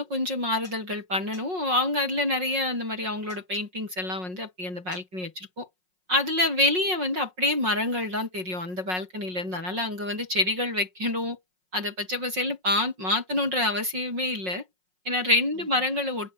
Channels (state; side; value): late; left; 5.5 ms